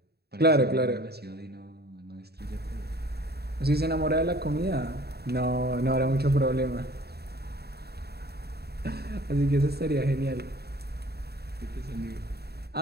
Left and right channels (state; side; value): late; left; 0.47 ms